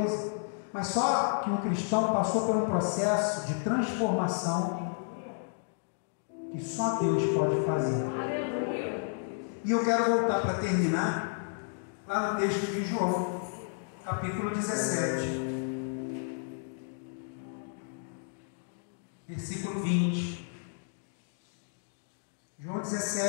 mas só que um cristão passou por um processo de transformação que só Deus pode fazer. E eu quero voltar para terminar lá no texto de João, capítulo 17, versículo 20. João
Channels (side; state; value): right; silent; digital silence